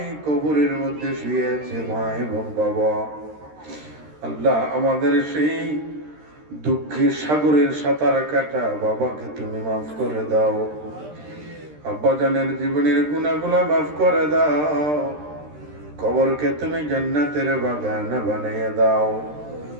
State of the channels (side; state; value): left; late; 13 ms